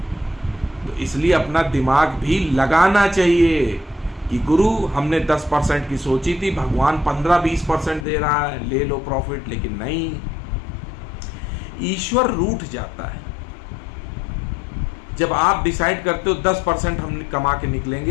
तो इसलिए अपना दिमाग भी लगाना चाहिए कि गुरु हमने 10% की सोची थी, भगवान 15-20% दे रहा है, ले लो प्रॉफिट। लेकिन नहीं, ईश्वर रूठ जाता है जब आप डिसाइड करते हो 10% हम कमा के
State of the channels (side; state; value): right; drops out; at 8.1 s